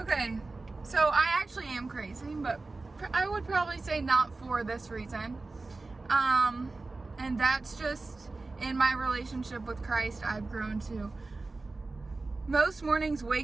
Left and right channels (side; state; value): left; quieter; 3.5 dB